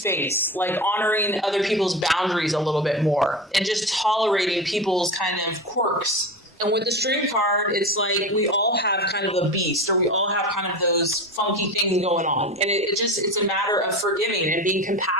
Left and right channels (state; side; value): normal; both; correlation 0.27